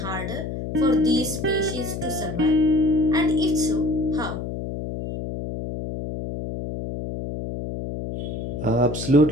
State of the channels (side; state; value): left; noise; hum, 6 dB below the sound